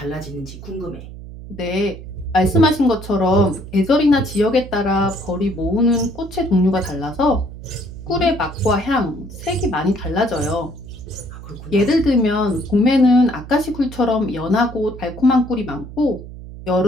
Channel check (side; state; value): right; noise; hum, 13 dB below the sound